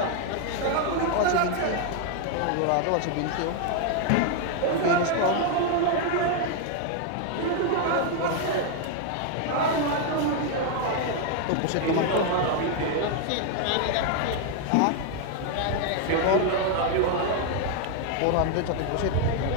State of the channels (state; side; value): different; both; correlation 0.00